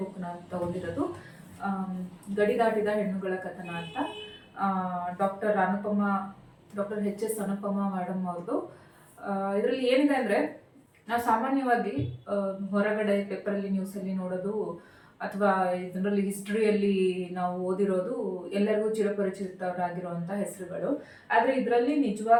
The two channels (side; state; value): both; identical; correlation 1.00